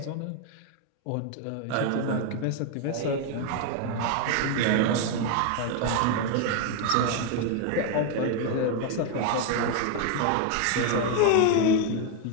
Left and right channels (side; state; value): both; different; correlation 0.01